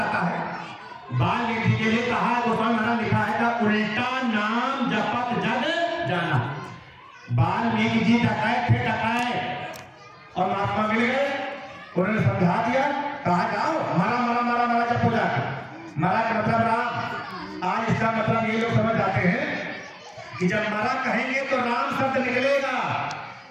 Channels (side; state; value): both; identical; correlation 1.00